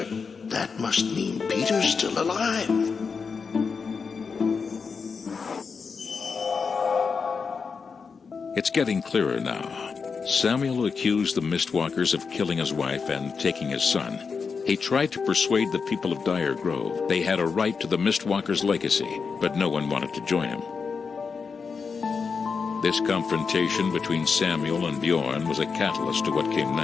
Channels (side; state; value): right; quieter; 5.4 dB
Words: That must mean Peter's still alive. It's getting clearer now. Samuel accused the Mistwalkers of killing his wife and taking his son. He tried to persuade the people of Dire Grove they had a right to the Mistwalkers' legacy, but no one wanted to join him. This confrontation between Samuel and Bjorn was a catalyst to what came